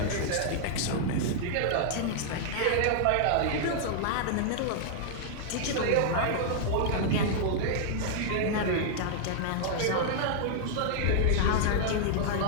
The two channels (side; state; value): both; different; correlation -0.01